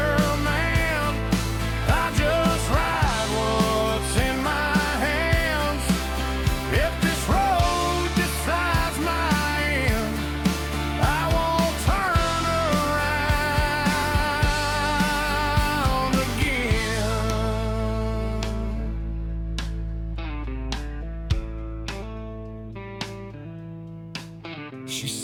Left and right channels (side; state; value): both; identical; correlation 1.00